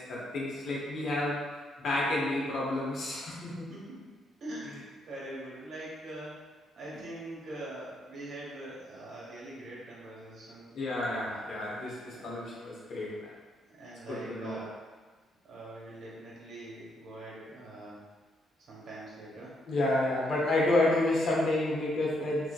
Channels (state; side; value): normal; both; correlation 0.75